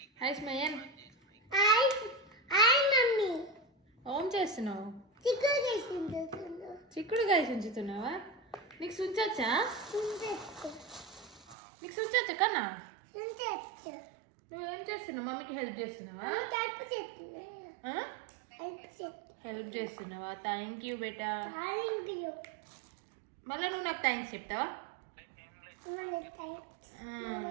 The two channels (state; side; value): drops out; left; at 11.6 s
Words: Hi Smayan. Hi hi mummy. ఏం చేస్తున్నావు? చిక్కుడు చేస్తున్నాను. చిక్కుడుకాయ చుంచుతున్నావా? నీకు సుంచొచ్చా? సుంచొచ్చు. నీకు సుంచొచ్చా కన్నా? సుంచొచ్చు. నువ్వేం చేస్తున్నావు? మమ్మీకి హెల్ప్ చేస్తున్నావా? హెల్ప్ చేస్తున్నా. హెల్ప్ చేస్తున్నావా? Thank you beta. Thank you. మళ్ళీ నువ్వు నాకు థ్యాంక్స్ చెప్తావా?